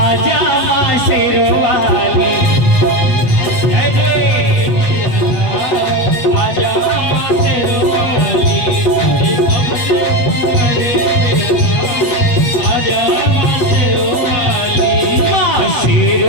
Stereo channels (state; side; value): late; right; 8.2 ms